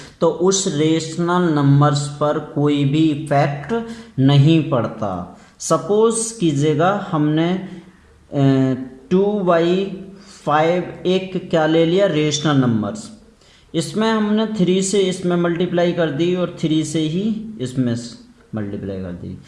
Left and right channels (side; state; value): both; identical; correlation 1.00